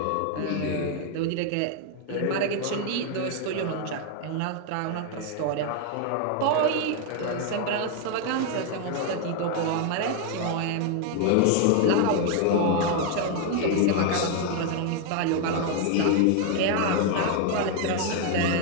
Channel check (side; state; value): both; different; correlation 0.01